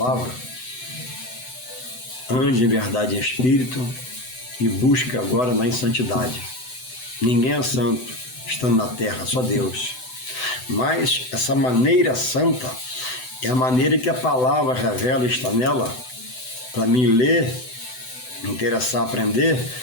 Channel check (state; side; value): late; right; 7.9 ms